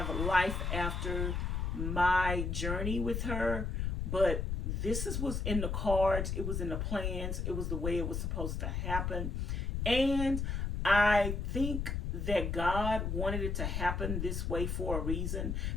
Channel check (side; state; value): left; noise; rumble, 1 dB below the sound